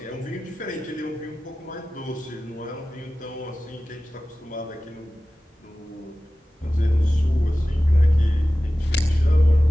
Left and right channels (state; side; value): normal; both; correlation 0.96